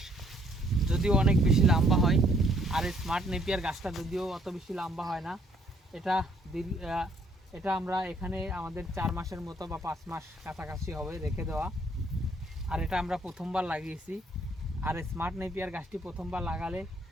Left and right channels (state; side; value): normal; both; correlation 0.65